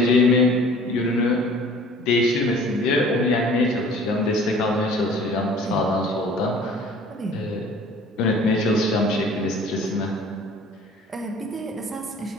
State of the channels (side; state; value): both; normal; correlation 0.49